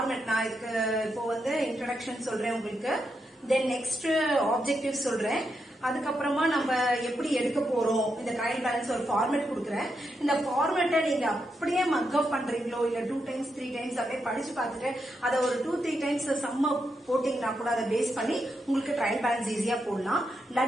நான் இதுக்கு இப்போ வந்து இன்ட்ரோடக்ஷன் சொல்றேன் உங்களுக்கு, தென் நெக்ஸ்ட் ஆப்ஜெக்டிவ் சொல்றேன், அதுக்கப்புறமா நம்ம எப்படி எடுக்க போறோம் இந்த ட்ரையல் பேலன்ஸ் ஒரு ஃபார்மேட் கொடுக்குறேன். இந்த ஃபார்மேட்டை நீங்க அப்படியே மக்கப் பண்றீங்களோ இல்ல 2 times 3 times அப்படியே படிச்சு பார்த்துட்டு அதை ஒரு 2-3 times சம்ம போட்டீங்கன்னா கூட அதை பேஸ் பண்ணி உங்களுக்கு ட்ரையல் பேலன்ஸ் ஈஸியா போடலாம்.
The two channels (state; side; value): normal; both; correlation 0.84